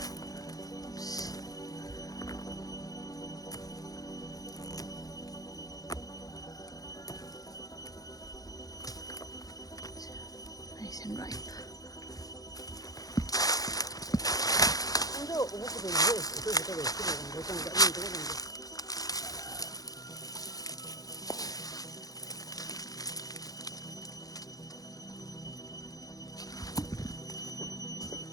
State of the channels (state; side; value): late; right; 0.18 ms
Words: Oops. Nice and ripe.